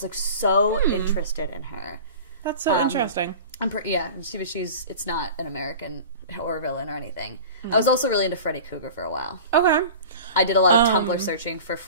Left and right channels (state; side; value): inverted; both; correlation -0.37